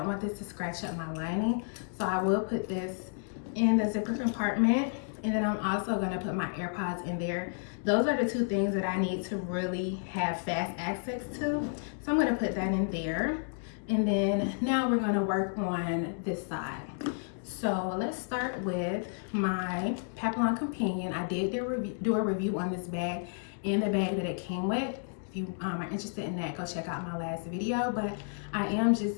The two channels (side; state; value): right; silent; digital silence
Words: want this to scratch up my lining. So I will put this in the zipper compartment. And then I'm also gonna put my AirPods in there. Those are the 2 things that I need to really have fast access to. So I'm gonna put that in there. And then now we're gonna work on this side. So let's start with my Papillon Companion. I did do a review on this bag and the bag that it came with. you are interested in that, go check out my last video. But I am